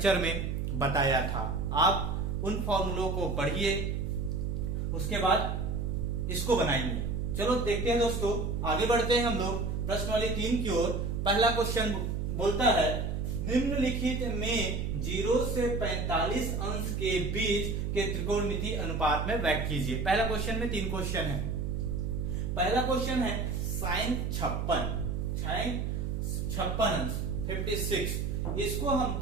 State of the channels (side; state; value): right; noise; hum, 1 dB below the sound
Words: में बताया था। आप उन फॉर्मूलों को पढ़िए, उसके बाद इसको बनाएंगे। चलो देखते हैं दोस्तों, आगे बढ़ते हैं हम लोग प्रश्नवाली 3 की ओर। पहला क्वेश्चन बोलता है निम्नलिखित में 0 से 45 अंश के बीच के त्रिकोणमिति अनुपात में व्यक्त कीजिए। पहला क्वेश्चन में 3 क्वेश्चन है। पहला क्वेश्चन है साइन 56 अंश 56, इसको